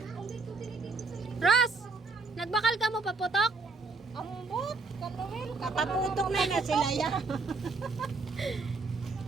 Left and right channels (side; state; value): left; quieter; 4.0 dB